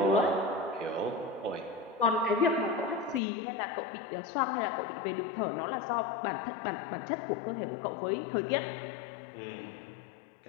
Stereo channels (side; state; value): right; drops out; at 3.2 s